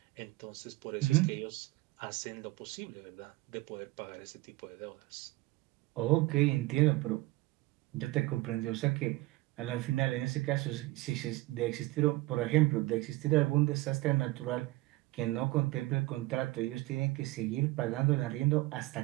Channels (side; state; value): left; quieter; 20.2 dB